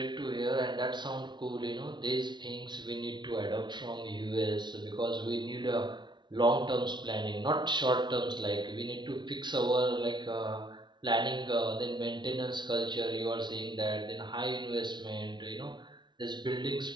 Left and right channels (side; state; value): left; late; 0.22 ms